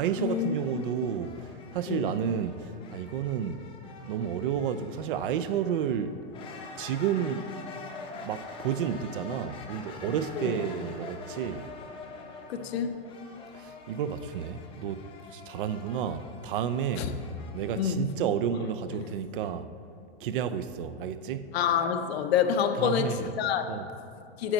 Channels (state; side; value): normal; both; correlation 0.04